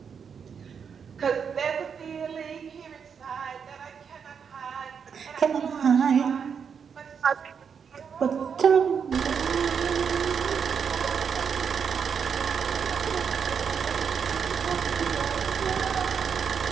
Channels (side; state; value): left; quieter; 6.7 dB